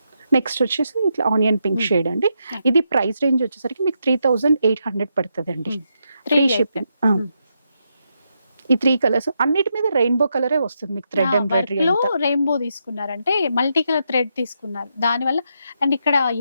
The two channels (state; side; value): inverted; both; correlation -0.82